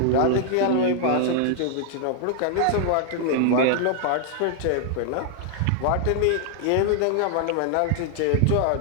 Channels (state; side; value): different; both; correlation 0.00